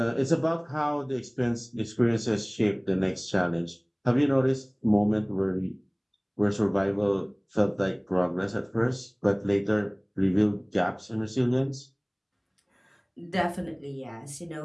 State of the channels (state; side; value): identical; both; correlation 1.00